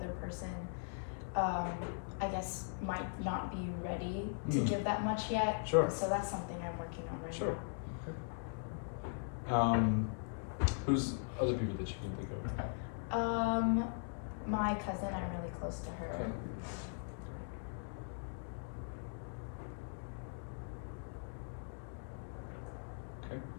person, I guess, might not be ready to give that much yet. Sure. So that's something I'm working on right now. Okay. Who's other people that you can think of? My cousin, I'm really close to her. Okay.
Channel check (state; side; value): silent; right; digital silence